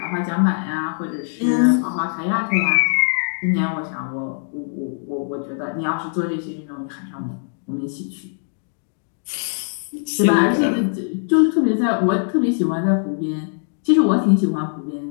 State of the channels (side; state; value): right; silent; digital silence